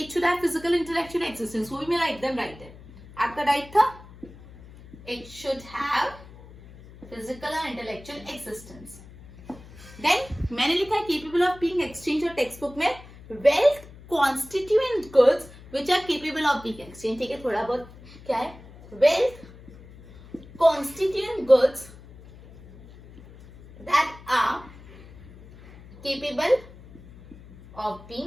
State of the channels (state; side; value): noise; left; hum, 20 dB below the sound